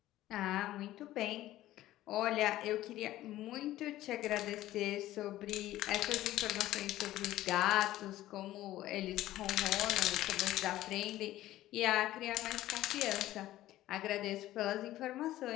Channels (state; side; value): quieter; right; 14.9 dB